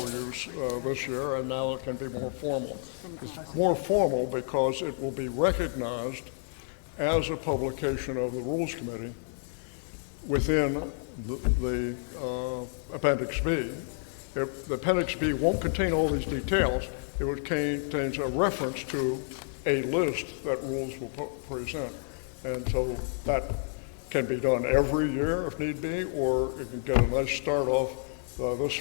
use this year, and now it can be more formal. It's more formal because it will be recognized as a publication of the Rules Committee within the Appendix B. The Appendix B won't contain all these details. It contains a reference to a list that Rules will present. And so that can be done every year if need be, or it can get a nice start off this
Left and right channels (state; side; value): silent; right; digital silence